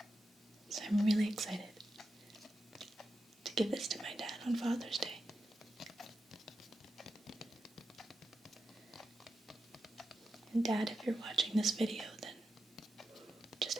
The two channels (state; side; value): normal; both; correlation 0.89